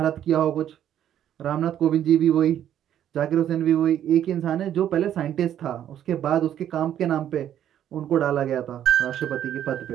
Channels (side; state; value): left; quieter; 10.6 dB